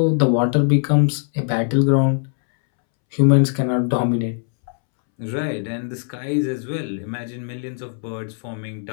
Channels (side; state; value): right; silent; 65 dB below the other